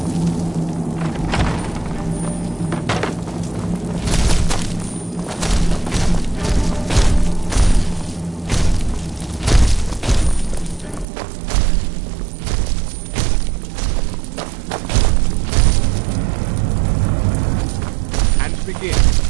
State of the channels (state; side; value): drops out; left; at 11.1 s